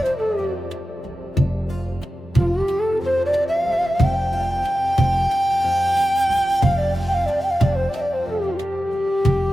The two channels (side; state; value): both; normal; correlation 0.93